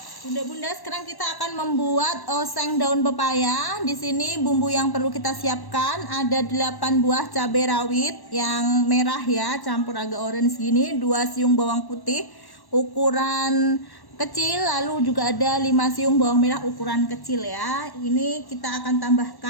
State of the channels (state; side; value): late; right; 1.1 ms